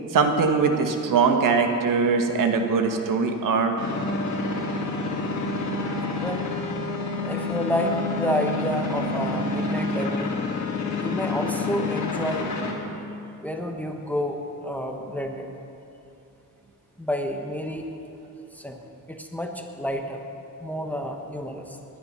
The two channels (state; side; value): normal; both; correlation 0.21